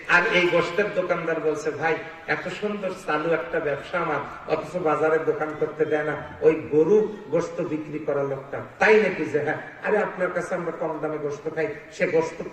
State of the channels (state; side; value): identical; both; correlation 1.00